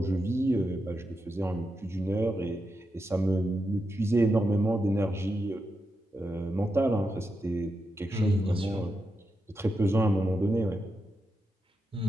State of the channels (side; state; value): both; normal; correlation 0.86